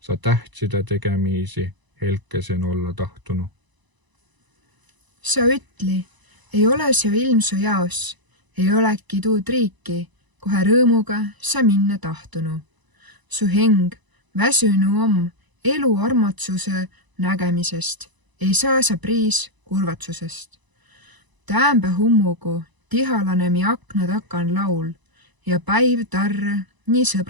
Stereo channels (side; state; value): left; late; 1.0 ms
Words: Sa tähtside tegemiisi helkesen olla tahtunu. Sa ütli, ei ole see ilm su jaos, ei oleki tuud riiki, kohe rõõmuga sa minna tahtunu. Su heng väsünu om elu armatsuse nägemisest, ei saa sa priis kurvatsusest. Täämbä hummugu tihalane mi akna takan laul ja päiv tarre nii